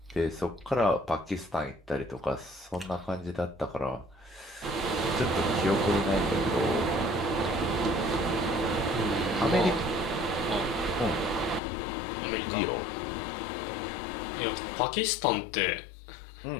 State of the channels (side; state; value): right; drops out; at 11.6 s